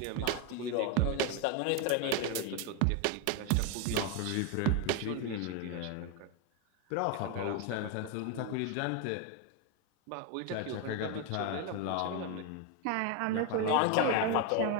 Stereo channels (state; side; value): different; both; correlation 0.02